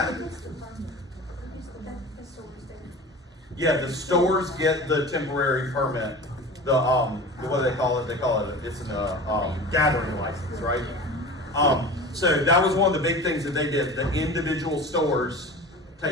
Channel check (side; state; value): both; normal; correlation 0.35